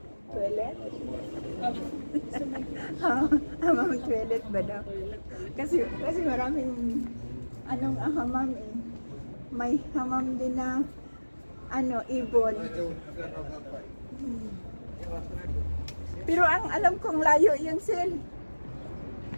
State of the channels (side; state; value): both; inverted; correlation -1.00